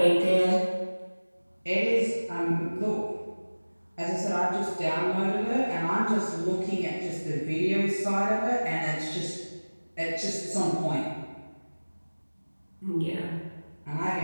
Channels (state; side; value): inverted; both; correlation -1.00